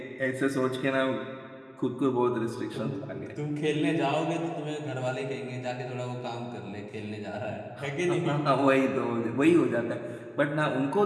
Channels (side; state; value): both; identical; correlation 1.00